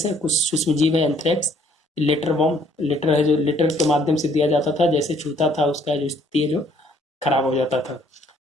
है, कुछ सूक्ष्मजीव है। एंथ्रेक्स, लेटर बॉम्ब, लेटर है जो लेटर के माध्यम से दिया जाता था, जैसे छूता था उसका जो स्थिति है जो खराब हो जाता था।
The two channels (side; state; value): both; normal; correlation 0.63